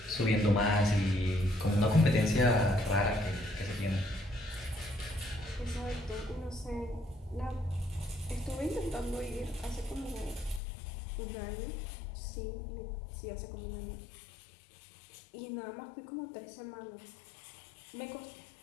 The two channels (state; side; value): drops out; right; at 10.6 s